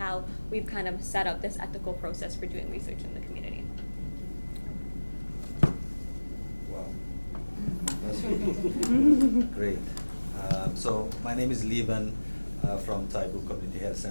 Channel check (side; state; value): both; inverted; correlation -1.00